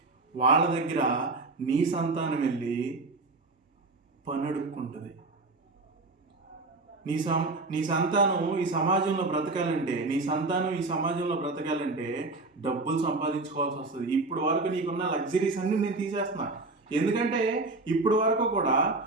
వాళ్ళ దగ్గర నీ సంతానం వెళ్ళి పని అడుక్కుంటుంది. నీ సంతానం ఈ సమాజంలో బ్రతకాలంటే డబ్బులు సంపాదించుకోవాల్సి వస్తుంది. ఇప్పుడు వరకు నీకున్న లగ్జరీస్ అన్ని నేను తీసేస్తున్నా. ఎందుకంటే ఇప్పుడు వరకు కూడా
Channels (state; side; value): quieter; left; 3.3 dB